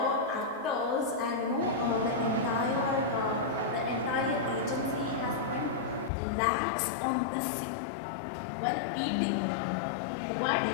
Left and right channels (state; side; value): drops out; right; at 6.1 s